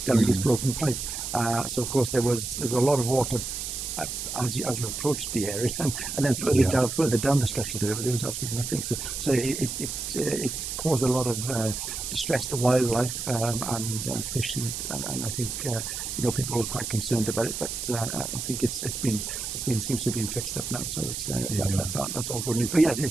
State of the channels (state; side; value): noise; right; hiss, 5 dB below the sound